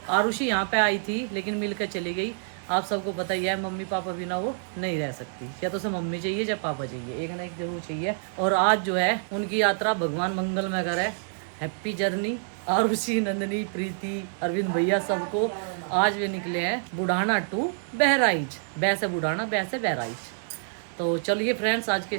आरुषि यहाँ पे आई थी लेकिन मिल कर चली गई। आप सबको पता ही है मम्मी पापा बिना वो नहीं रह सकती, या तो उसे मम्मी चाहिए या पापा चाहिए, एक ना एक जरूर चाहिए। और आज जो है उनकी यात्रा भगवान मंगल में करे। हैप्पी जर्नी आरुषि, नंदनी, प्रीति, अरविंद भैया सबको। आज वे निकले हैं बुढ़ाना टू बहराइच, बैसे बुढ़ाना बैसे बहराइच। तो चलिए फ्रेंड्स आज के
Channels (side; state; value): left; silent; 60 dB below the other